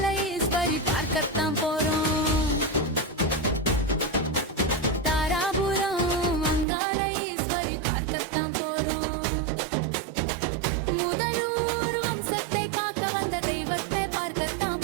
ஈஸ்வரி பார்க்கத்தான் போறோம். தாராபுரம் அங்காள ஈஸ்வரி பார்க்கத்தான் போறோம். முதலூர் வம்சத்தை காக்க வந்த தெய்வத்தை பார்க்கத்தான்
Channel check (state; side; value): drops out; left; at 6.7 s